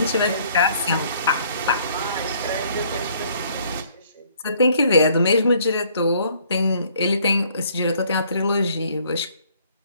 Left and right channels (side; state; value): both; inverted; correlation -0.62